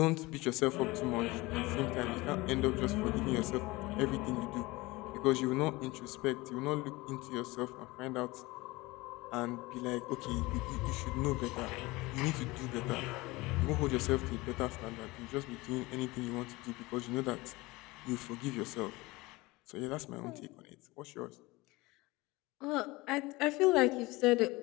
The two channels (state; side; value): quieter; right; 21.8 dB